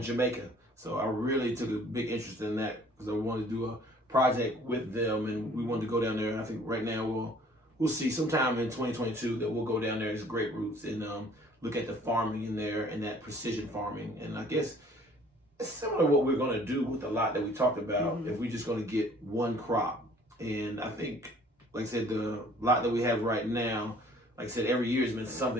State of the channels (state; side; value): normal; both; correlation 0.55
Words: Jamaica. So I really took a big interest in that because I wanted to do a project with them, and we wanted to go down there. And I think right now we'll see sometime in 2022 that we'll go down there as Great Roots and look at the farming in there and that precision farming. And I guess it's similar to what we're going to do with the lot that we talked about if we're just going to get one crop. And I think, like I said, the lot that we have right now, like I said, every year has been